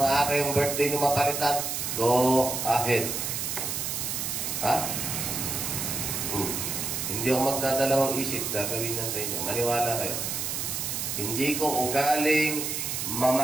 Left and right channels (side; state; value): right; noise; hiss, 2 dB below the sound